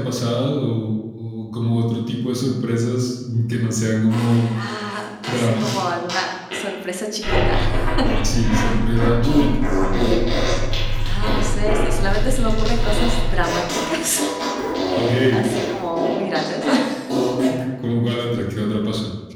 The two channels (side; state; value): both; identical; correlation 1.00